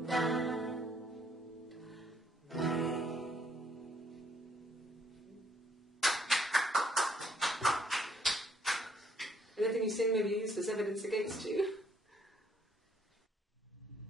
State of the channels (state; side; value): normal; both; correlation 0.67